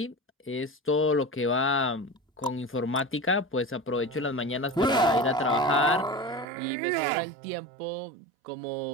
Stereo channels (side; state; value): left; drops out; at 6.5 s